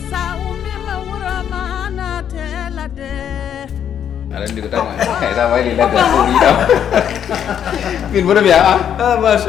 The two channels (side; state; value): right; quieter; 9.1 dB